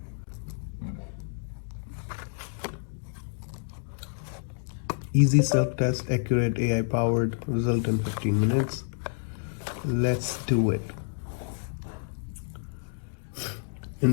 Easy self test, accurate AI powered, result in 15 minutes. Let's do it.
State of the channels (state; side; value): silent; right; digital silence